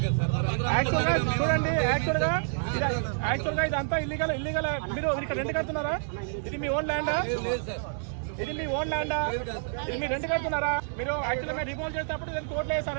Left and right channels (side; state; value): left; silent; digital silence